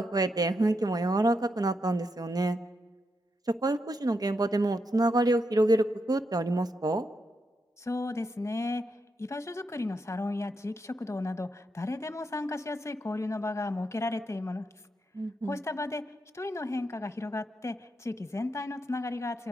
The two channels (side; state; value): both; normal; correlation 0.83